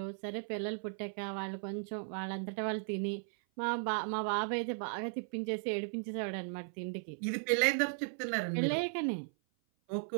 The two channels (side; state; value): left; silent; 53 dB below the other